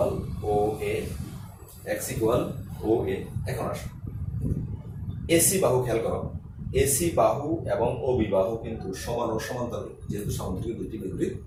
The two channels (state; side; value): identical; both; correlation 1.00